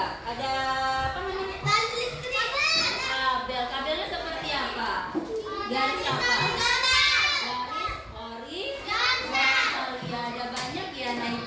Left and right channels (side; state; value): both; identical; correlation 1.00